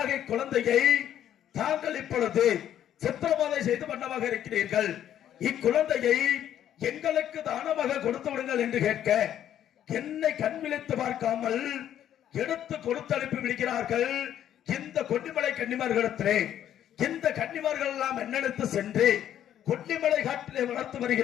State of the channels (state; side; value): quieter; right; 10.7 dB